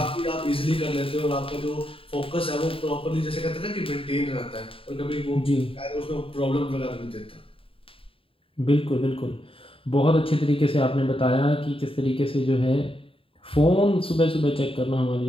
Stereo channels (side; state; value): right; late; 0.27 ms